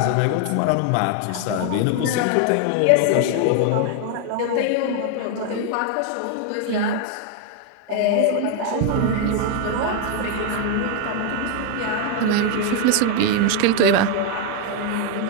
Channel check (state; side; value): different; both; correlation 0.01